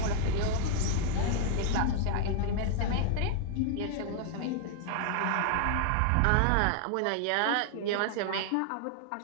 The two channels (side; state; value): both; different; correlation 0.00